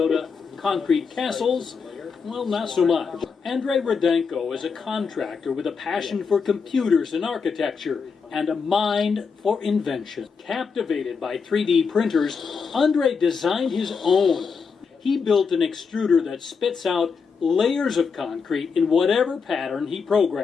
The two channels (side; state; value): right; quieter; 5.5 dB